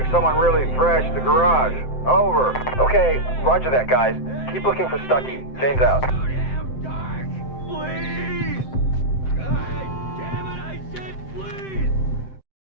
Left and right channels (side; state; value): right; late; 7.7 ms